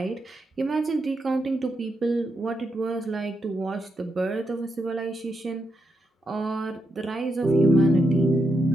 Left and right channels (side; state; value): both; normal; correlation 0.83